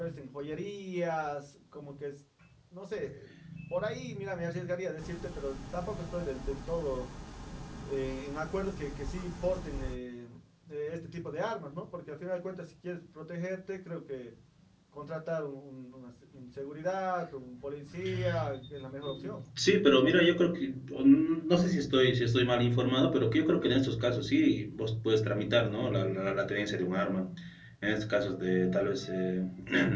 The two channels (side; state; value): both; identical; correlation 1.00